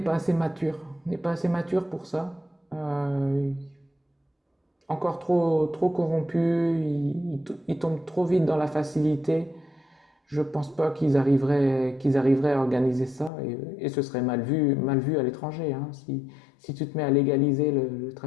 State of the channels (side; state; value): right; drops out; at 13.3 s